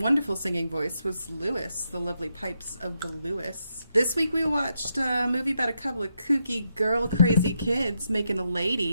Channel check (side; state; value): both; inverted; correlation -0.82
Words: singing voice was Lewis, the lovely pipes of the Lewis. This week we watched a movie about a couple of kooky girl crazy kids making a